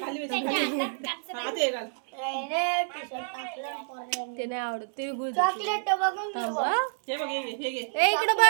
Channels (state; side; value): silent; left; 59 dB below the other